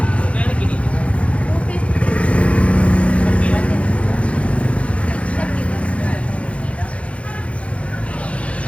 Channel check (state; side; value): late; right; 0.062 ms